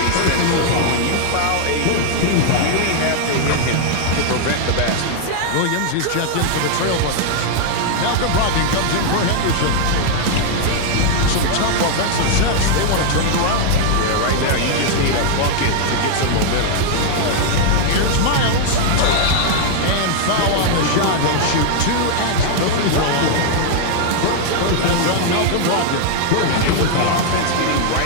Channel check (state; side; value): different; both; correlation 0.00